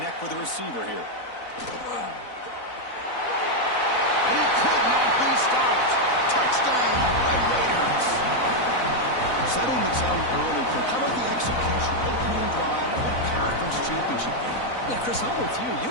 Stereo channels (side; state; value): right; late; 4.0 ms